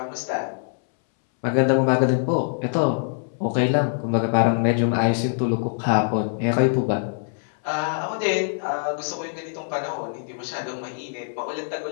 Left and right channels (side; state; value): right; silent; 63 dB below the other